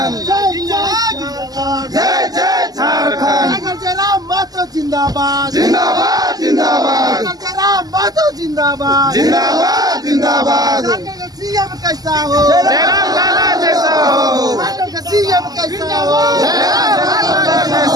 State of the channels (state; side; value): late; left; 0.18 ms